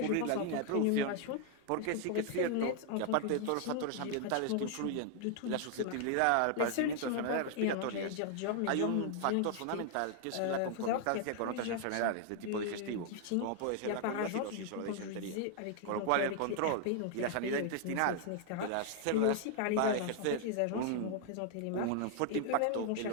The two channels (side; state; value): both; different; correlation 0.00